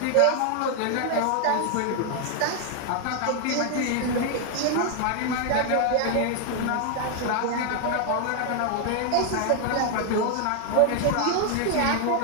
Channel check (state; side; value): different; both; correlation 0.00